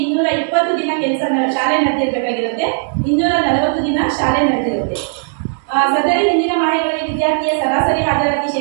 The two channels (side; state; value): left; silent; digital silence